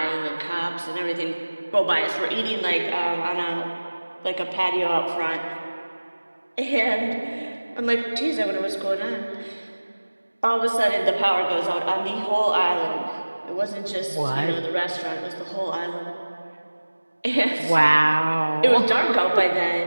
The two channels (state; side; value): inverted; both; correlation -1.00